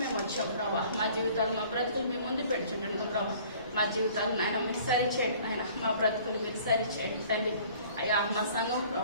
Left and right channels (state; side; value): inverted; both; correlation -0.52